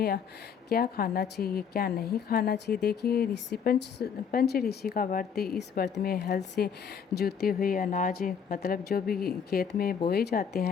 क्या खाना चाहिए, क्या नहीं खाना चाहिए। देखिए, पंच ऋषि का व्रत, इस व्रत में हल से जुते हुए अनाज, मतलब जो भी खेत में बोए जाते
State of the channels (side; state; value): right; quieter; 7.1 dB